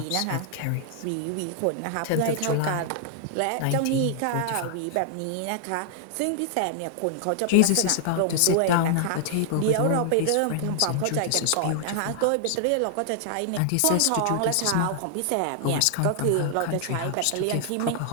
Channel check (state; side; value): different; both; correlation 0.00